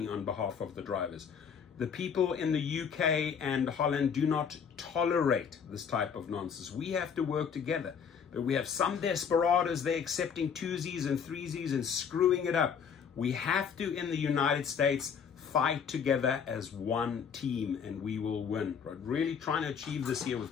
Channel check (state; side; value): quieter; right; 7.0 dB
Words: on behalf of the drivers. The people in the UK and Holland do not tolerate this type of nonsense. We have to work together. But we have some desperados, they're accepting twosies and threesies and screwing it up. We have to, in the United States, fight together as one team, and we will win. Right? Really trying to achieve this here